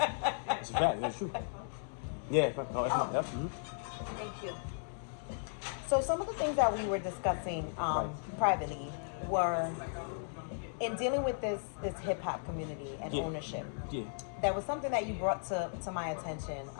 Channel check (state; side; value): silent; right; digital silence